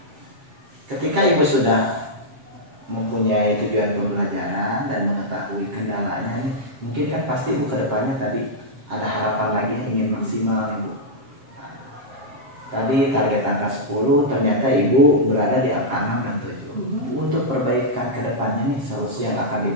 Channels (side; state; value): left; late; 7.4 ms